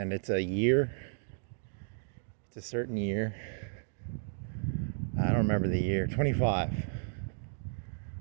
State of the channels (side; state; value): left; silent; digital silence